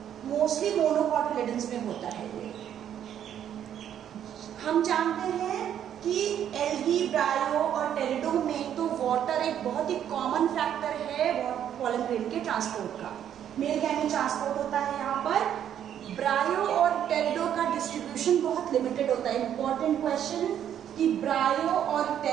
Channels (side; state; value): left; quieter; 9.9 dB